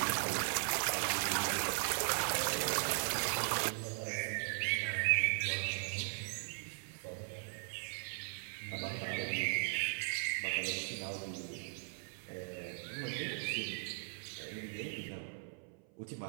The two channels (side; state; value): left; silent; 52 dB below the other